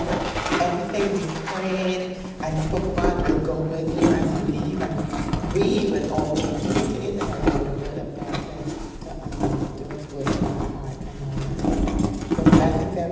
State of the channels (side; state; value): both; identical; correlation 1.00